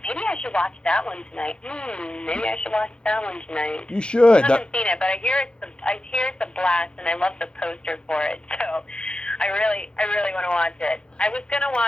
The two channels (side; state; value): right; late; 0.052 ms